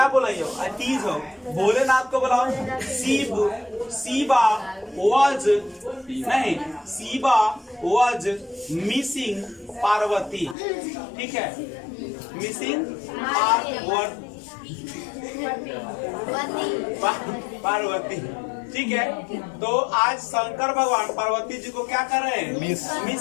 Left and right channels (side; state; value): right; drops out; at 10.6 s